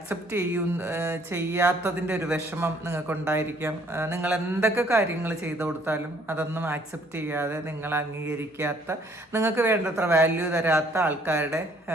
ചെയ്യാത്തതിൻ്റെ ഒരു വിഷമം നിങ്ങൾക്കുണ്ടായിരിക്കാം. നിങ്ങൾ എന്തൊക്കെ കാര്യങ്ങൾ ചെയ്തു കൊടുത്താലും അതൊന്നും ആക്സെപ്റ്റ് ചെയ്യാതെ നിങ്ങൾ അംഗീകരിക്കാത്ത, നിങ്ങൾക്ക് വേണ്ടത്ര വാല്യൂ തരാത്ത ആൾക്കാരുടെ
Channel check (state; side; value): normal; both; correlation 0.62